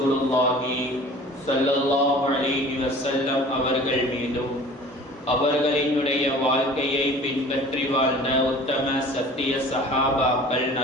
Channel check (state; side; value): normal; both; correlation 0.45